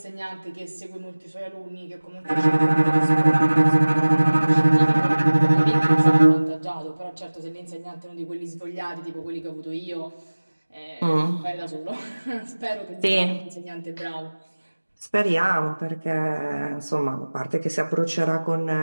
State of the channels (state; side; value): inverted; both; correlation -1.00